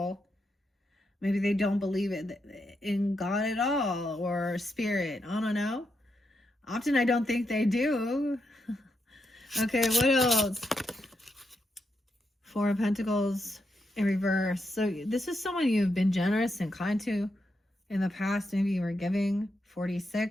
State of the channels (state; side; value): normal; both; correlation 0.83